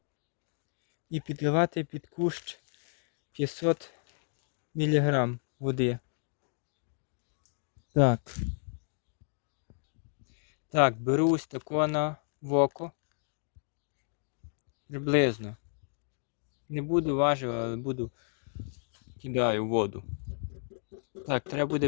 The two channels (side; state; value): right; silent; 56 dB below the other